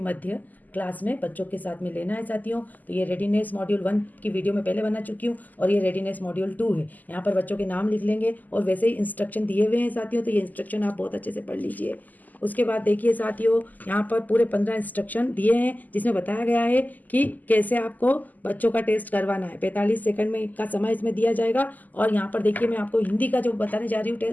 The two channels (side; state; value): right; late; 0.082 ms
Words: मध्य क्लास में बच्चों के साथ में लेना है साथियों। तो ये रेडीनेस मॉड्यूल 1 की वीडियो मैं पहले बना चुकी हूँ और ये रेडीनेस मॉड्यूल 2 है। यहाँ पर बच्चों के नाम लिख लेंगे और वैसे ही इंस्ट्रक्शन दिए हुए हैं साथियों, तो ये इंस्ट्रक्शन आप बहुत अच्छे से पढ़ लीजिए। उसके बाद देखिए साथियों, यहाँ पर पूरे 15 इंस्ट्रक्शन दिए हैं जिसमें बताया गया है कि कैसे आपको बच्चों का टेस्ट करवाना है। 45 सेकंड में का समय इसमें दिया जाएगा। और यहाँ पर देखिए मैं आपको हिंदी का जो बताने जा रही हूँ